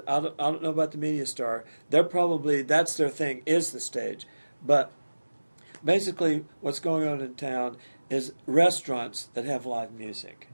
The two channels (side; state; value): both; inverted; correlation -1.00